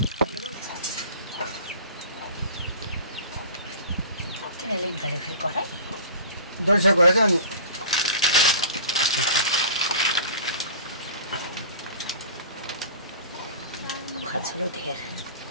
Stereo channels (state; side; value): inverted; both; correlation -0.38